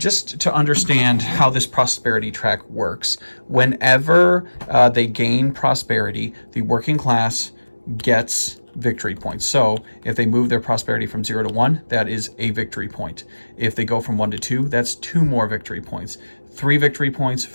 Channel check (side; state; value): both; inverted; correlation -1.00